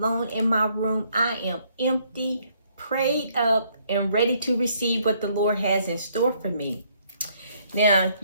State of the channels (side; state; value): both; inverted; correlation -0.68